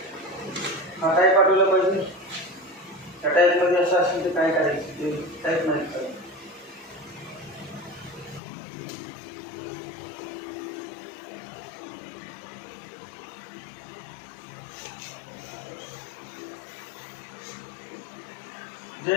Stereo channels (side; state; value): right; drops out; at 8.4 s